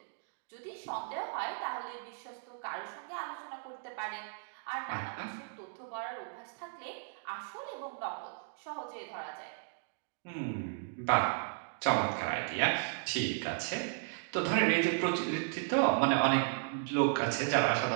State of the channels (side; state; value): left; silent; digital silence